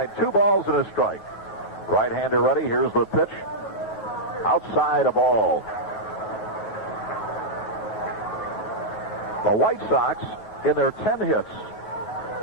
2 balls and a strike. Right-hander ready. Here's the pitch. Outside a ball. The White Sox, in their 10 hits,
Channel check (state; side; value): late; right; 9.4 ms